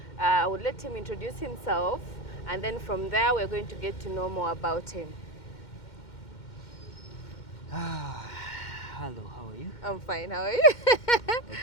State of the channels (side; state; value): right; late; 2.1 ms